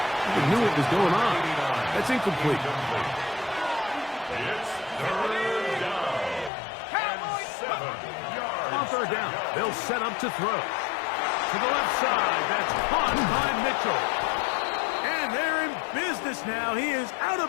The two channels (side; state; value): right; drops out; at 6.5 s